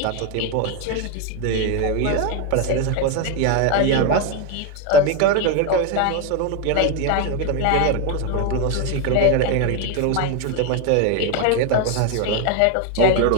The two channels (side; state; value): both; different; correlation 0.02